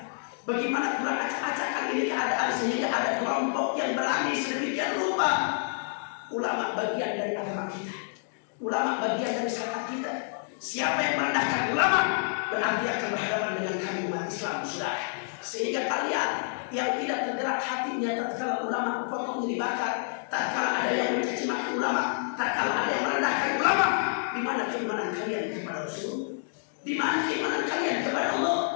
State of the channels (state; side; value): silent; right; digital silence